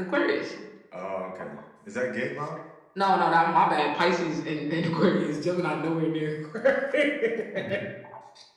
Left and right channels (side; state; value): both; identical; correlation 1.00